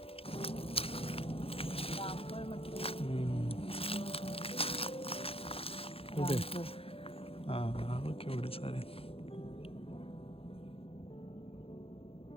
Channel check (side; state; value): right; late; 0.27 ms